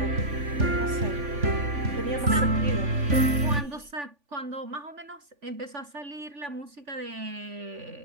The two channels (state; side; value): late; left; 3.5 ms